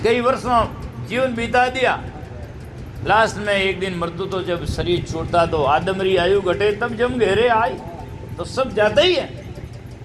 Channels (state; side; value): identical; both; correlation 1.00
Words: कई वर्षों जीवन बिता दिया, लास्ट में एक दिन मृत्यु, तो जब शरीर छूटता तो आदमरी आयु घटे तब जम घेरे आई, तो सब जाता ही है।